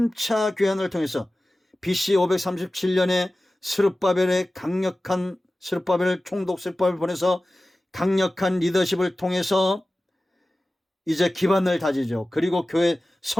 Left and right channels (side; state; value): both; normal; correlation 0.96